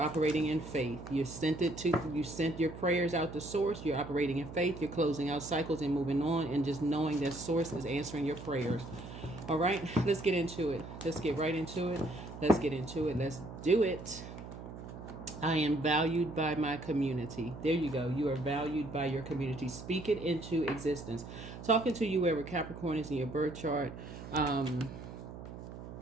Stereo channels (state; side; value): noise; right; hum, 12 dB below the sound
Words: in faith. You sent your prayers out to source. You're operating in faith. You're closing out cycles and moving on, and just knowing that source is answering your prayers. All right, let's get into it. Let's get right into it. Let's get into it. Let's do it. I am valued by my community. There you go. You are valued by your community. Speak it into existence. Talking to you wherever Capricorn is in your birth chart.